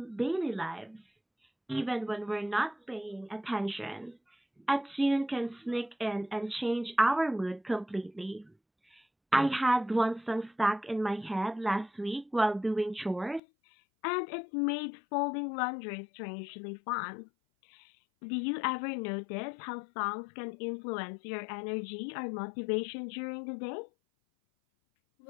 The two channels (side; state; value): right; drops out; at 13.4 s